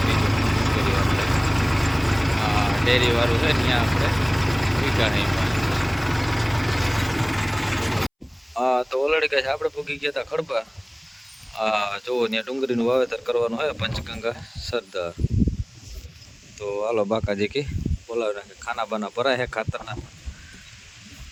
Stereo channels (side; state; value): both; identical; correlation 1.00